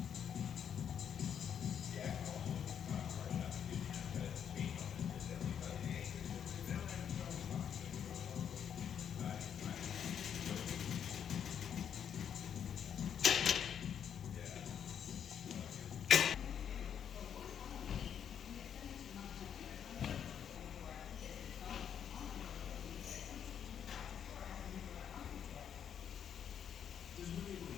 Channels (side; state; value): right; quieter; 8.5 dB